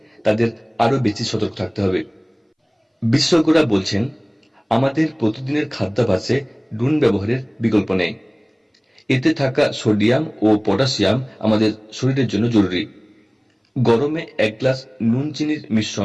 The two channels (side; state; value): both; identical; correlation 1.00